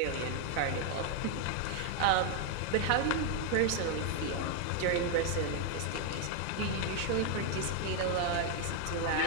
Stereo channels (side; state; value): both; different; correlation 0.01